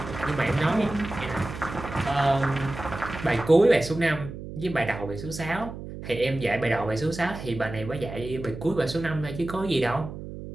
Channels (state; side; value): noise; right; hum, 10 dB below the sound